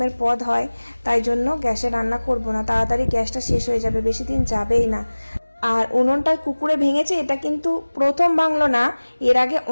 পদ হয়, তাই জন্য গ্যাসে রান্না করব না, তাড়াতাড়ি গ্যাসটা শেষ হয়ে যাবে, বেশি দিন যাবেই না। আর উনুনটায় কুকুরে ভেঙেছে, এটা কিন্তু প্রথম ভাঙলো না, এর আগে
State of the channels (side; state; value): both; inverted; correlation -1.00